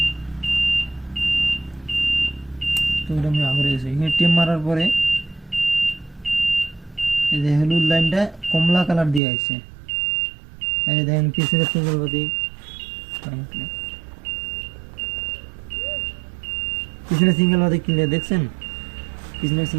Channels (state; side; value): drops out; left; at 9.2 s